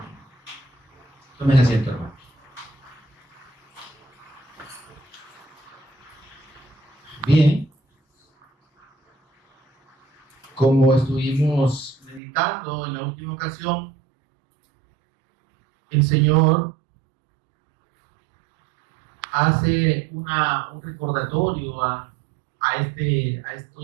Tomen asiento, hermanos. Bien, como estuvimos meditando en la última ocasión, el Señor hace un recordatorio a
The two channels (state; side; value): drops out; left; at 12.2 s